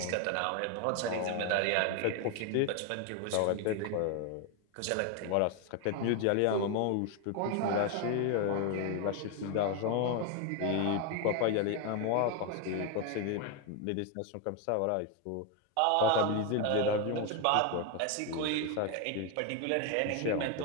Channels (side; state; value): both; different; correlation 0.01